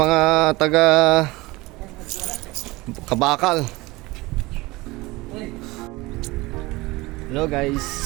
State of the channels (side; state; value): left; quieter; 21.6 dB